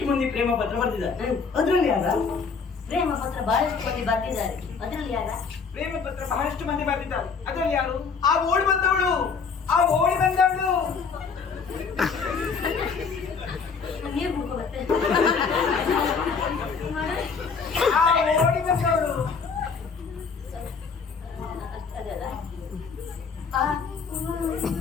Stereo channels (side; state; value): right; quieter; 5.4 dB